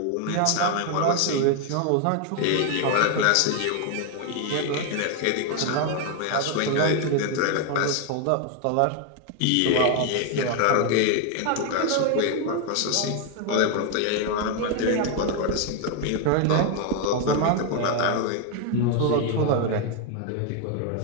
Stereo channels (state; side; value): different; both; correlation 0.01